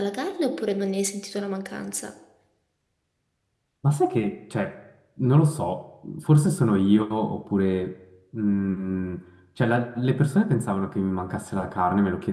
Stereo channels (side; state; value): both; identical; correlation 1.00